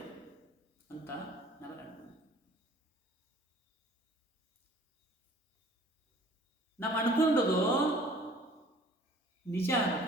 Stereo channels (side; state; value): both; normal; correlation 0.52